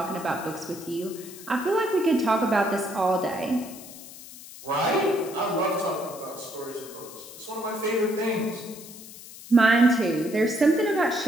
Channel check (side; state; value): left; noise; hiss, 16 dB below the sound